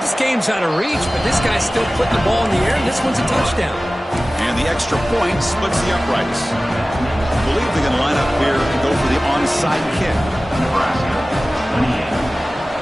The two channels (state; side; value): normal; both; correlation 0.97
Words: This game's out of reach, but this guy's still putting the ball in the air, and this one's a touchdown. And the extra point splits the uprights. I believe they're going to line up here and go for the onside kick. Nebraska, 28.